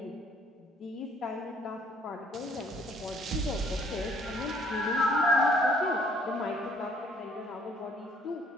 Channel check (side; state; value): both; normal; correlation 0.62